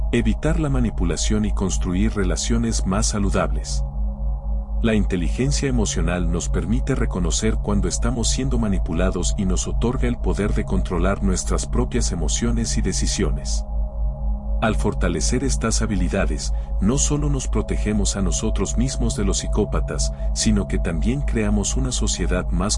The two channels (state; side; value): identical; both; correlation 1.00